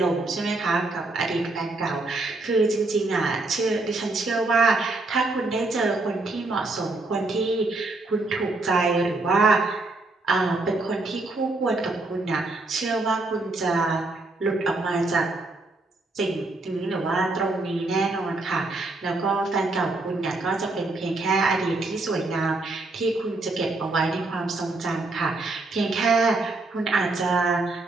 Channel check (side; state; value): left; quieter; 3.2 dB